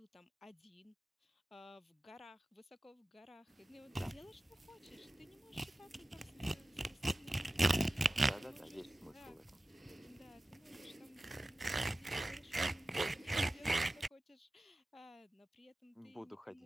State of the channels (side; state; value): both; normal; correlation 0.96